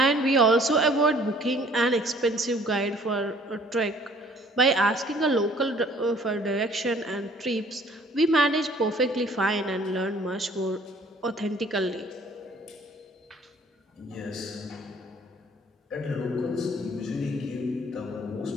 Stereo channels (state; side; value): normal; both; correlation 0.56